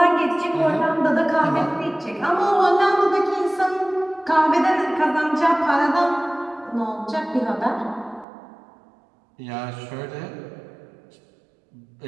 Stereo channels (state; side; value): drops out; left; at 8.2 s